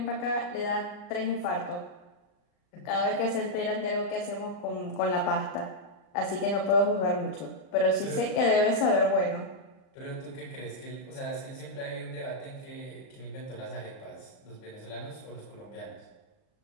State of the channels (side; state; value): right; late; 39 ms